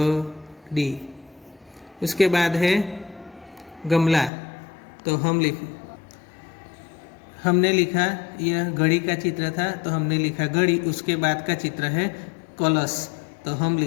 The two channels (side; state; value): right; drops out; at 4.3 s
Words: उसके बाद है गमला, तो हमने लिखा, यह घड़ी का चित्र था, तो हमने लिखा घड़ी। उसके बाद का चित्र है कलश, तो हम